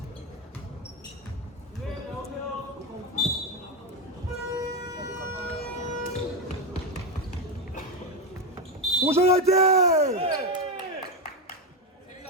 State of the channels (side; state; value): both; normal; correlation 0.11